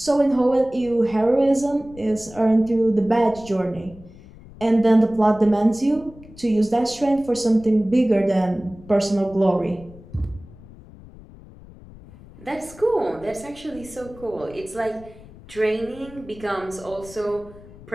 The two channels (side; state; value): left; noise; rumble, 20 dB below the sound